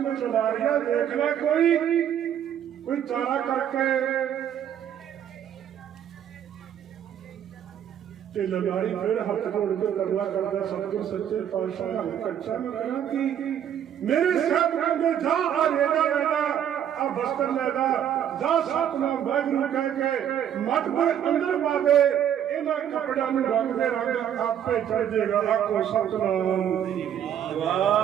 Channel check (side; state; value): left; quieter; 9.7 dB